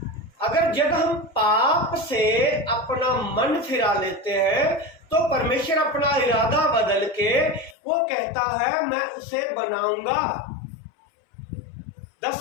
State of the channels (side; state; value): right; drops out; at 7.8 s